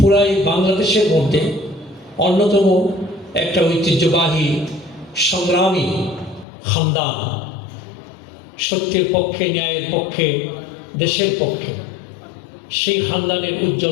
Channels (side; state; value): right; drops out; at 6.5 s